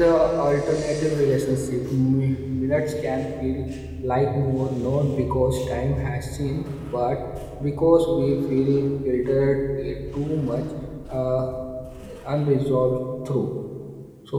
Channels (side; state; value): both; identical; correlation 1.00